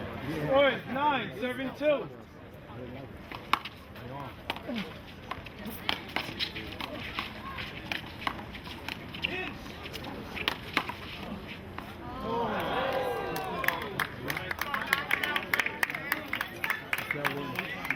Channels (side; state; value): both; identical; correlation 1.00